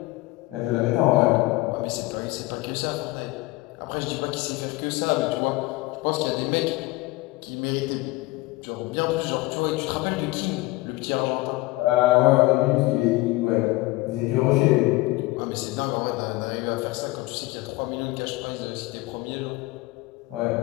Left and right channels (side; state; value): right; quieter; 20.7 dB